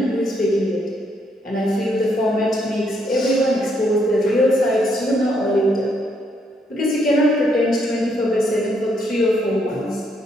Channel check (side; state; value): both; normal; correlation 0.74